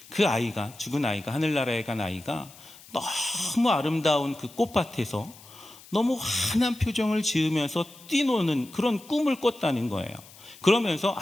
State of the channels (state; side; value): noise; left; hiss, 21 dB below the sound